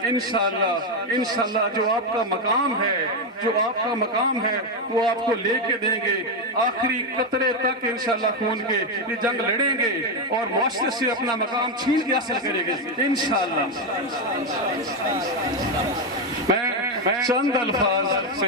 इंशाअल्लाह इंशाअल्लाह जो आपका मकाम है, जो आपका मकाम है वो आपको लेके देंगे आखिरी कतरे तक। इंशाअल्लाह खून के ये जंग लड़ेंगे और मुआशरे से अपना मकाम छीन के हासिल करेंगे इंशाअल्लाह। मैं चंद अल्फाज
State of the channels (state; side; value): normal; both; correlation 0.06